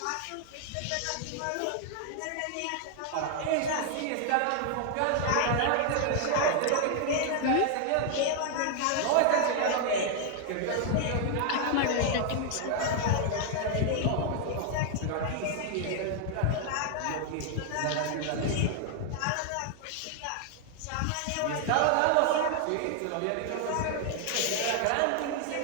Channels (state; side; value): different; both; correlation 0.00